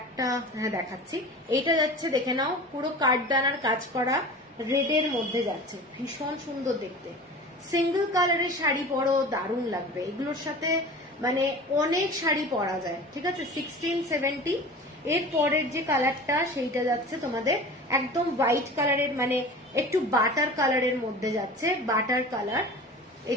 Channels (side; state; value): both; normal; correlation 0.37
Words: হ্যাঁ দেখাচ্ছি। এইটা যাচ্ছে দেখে নাও, পুরো কাঠদানার কাজ করা, রেডের মধ্যে যাচ্ছে, ভীষণ সুন্দর দেখতে। সিঙ্গেল কালারের শাড়ি পরো, দারুণ লাগবে এগুলোর সাথে, মানে অনেক শাড়ি পরা যায়, ঠিক আছে। 1670। এর পরের যে কালারটা সেইটা যাচ্ছে তোমাদের একদম হোয়াইট কালারের, মানে একটু বাটার কালারের মধ্যে যাচ্ছে, বাটার কালার।